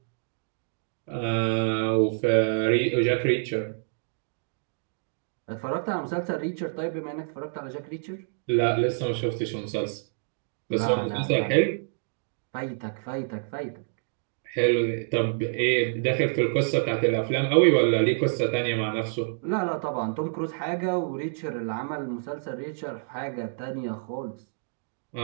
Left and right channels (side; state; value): left; silent; digital silence